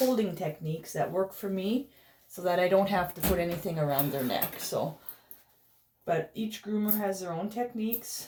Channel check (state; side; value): identical; both; correlation 1.00